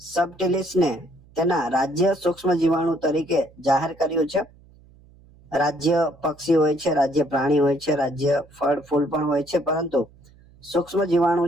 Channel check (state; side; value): noise; right; hum, 27 dB below the sound